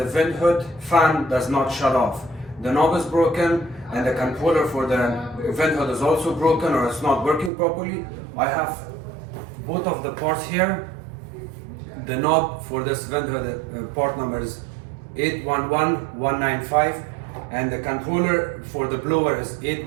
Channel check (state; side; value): drops out; left; at 7.5 s